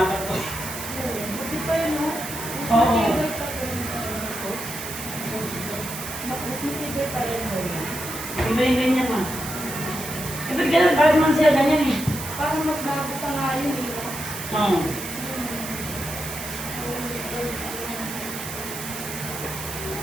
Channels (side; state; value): right; noise; hiss, 8 dB below the sound